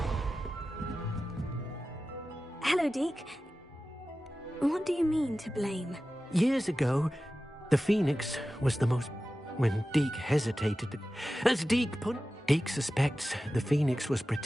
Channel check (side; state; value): both; normal; correlation 0.94